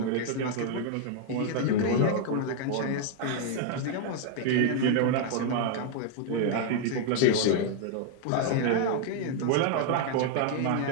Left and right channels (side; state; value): both; different; correlation 0.00